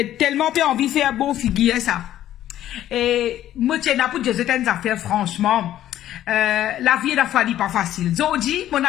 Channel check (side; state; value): right; quieter; 12.5 dB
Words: tellement peu envie de faire bon figure, ça. Et moi, tiens, pour dire certaines affaires, franchement, la vie, la fois, pas facile. Zodi, mon